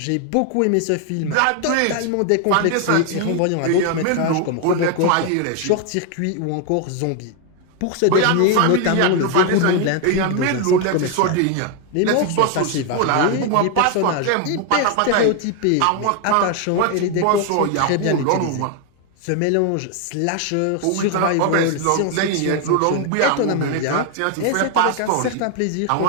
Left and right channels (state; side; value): different; both; correlation 0.01